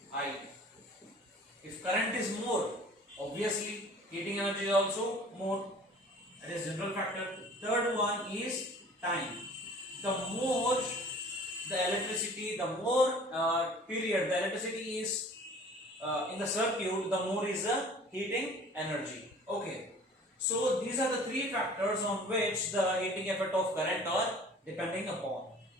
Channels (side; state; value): both; normal; correlation 0.48